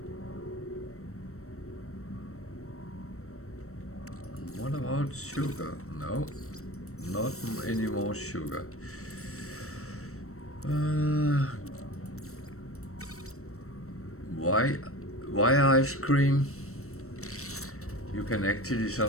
What about sugar? No, not any more sugar. Why ice cream? You can actually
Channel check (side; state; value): right; late; 0.63 ms